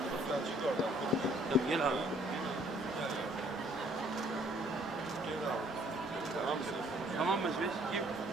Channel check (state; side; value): normal; both; correlation 0.62